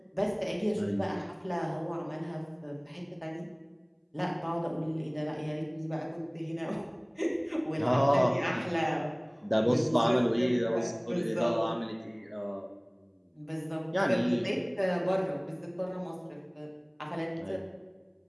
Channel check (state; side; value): identical; both; correlation 1.00